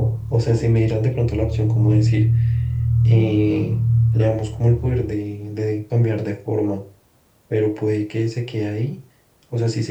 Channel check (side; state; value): both; identical; correlation 1.00